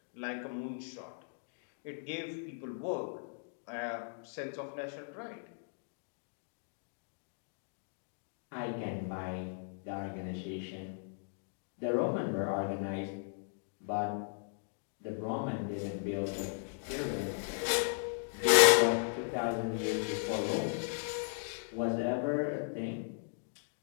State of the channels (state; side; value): silent; right; digital silence